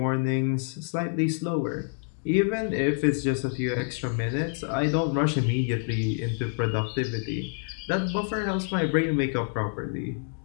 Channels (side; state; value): right; silent; 60 dB below the other